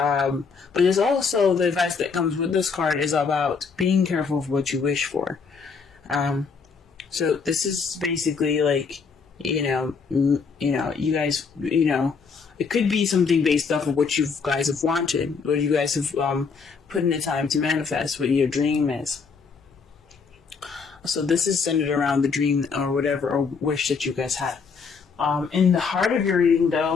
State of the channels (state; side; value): quieter; right; 5.3 dB